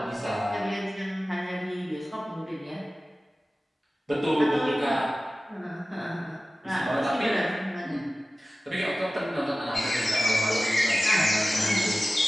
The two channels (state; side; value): normal; both; correlation 0.96